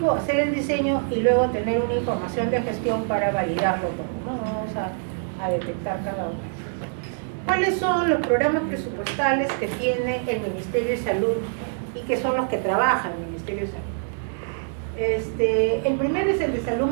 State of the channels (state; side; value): silent; left; digital silence